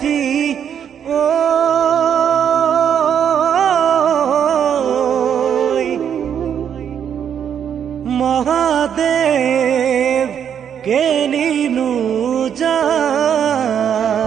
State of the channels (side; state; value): left; quieter; 8.5 dB